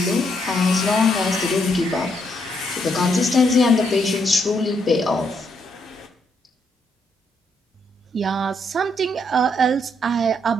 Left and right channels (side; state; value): both; normal; correlation 0.75